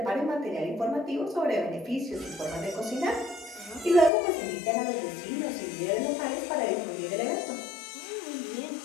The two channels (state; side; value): drops out; right; at 4.1 s